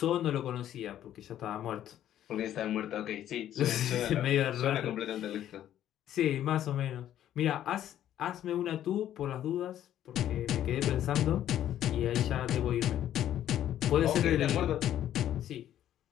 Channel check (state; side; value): quieter; right; 11.5 dB